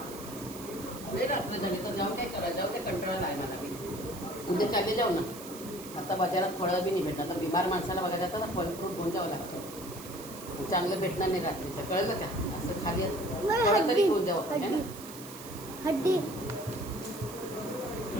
रात्र झाली तर जाऊन काय करा जाऊ काय कंटाळा नाही मला मी उद्या चालले जाऊ ना आता बाजारात फळं बी नाही भेटणार आता बिमार माणसाला बघायला जातं तर फळ फ्रूट घेऊन जावं लागतं चांगलं भेटणार नाही रात्रीचं कळलं का असं खाली फळं तरी घेऊन जावं आहे ना हड्डी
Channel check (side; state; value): right; noise; hiss, 14 dB below the sound